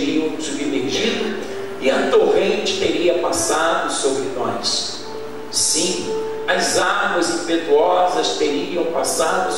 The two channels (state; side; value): identical; both; correlation 1.00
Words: submergido e a torrente teria passado sobre nós. Sim, as águas impetuosas teriam passado